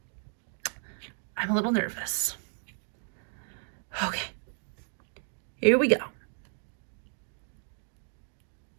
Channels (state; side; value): silent; left; 56 dB below the other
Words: I'm a little nervous. Okay. Here we go.